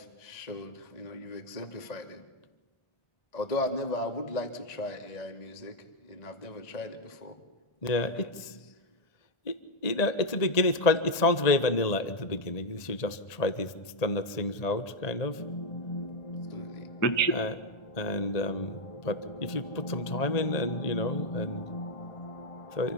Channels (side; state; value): right; late; 1.8 ms